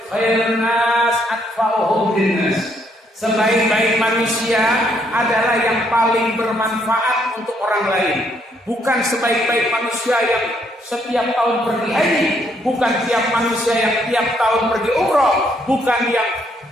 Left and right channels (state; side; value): normal; both; correlation 0.71